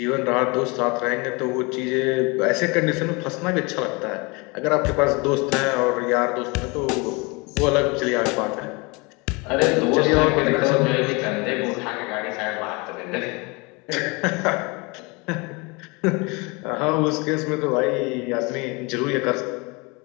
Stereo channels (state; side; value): quieter; right; 27.8 dB